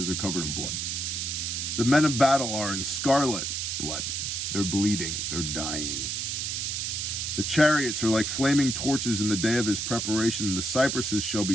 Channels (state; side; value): noise; right; hiss, 2 dB below the sound